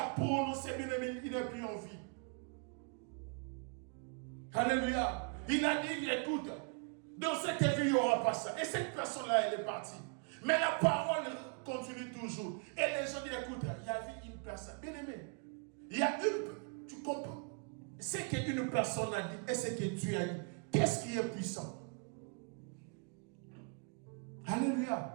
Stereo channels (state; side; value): quieter; left; 38.5 dB